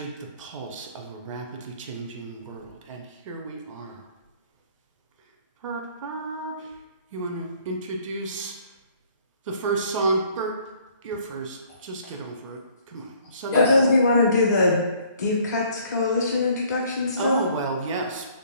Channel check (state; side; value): inverted; both; correlation -0.59